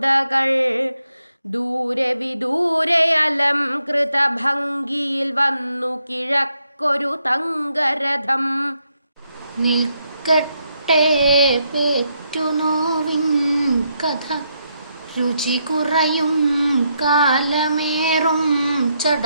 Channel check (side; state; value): both; inverted; correlation -0.79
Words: ദൂരെ വിദൂരെ അലംകൃത ഭംഗിയിൽ വന്നു കിഴക്കൊരു തങ്കരഥം. നിൽക്കട്ടെ പേറ്റുനോവിൻ കഥ, രുചി കുറയും കാലമേറും